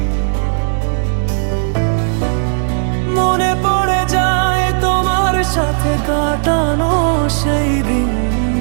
মনে পড়ে যায় তোমার সাথে কাটানো সেই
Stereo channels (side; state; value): left; silent; digital silence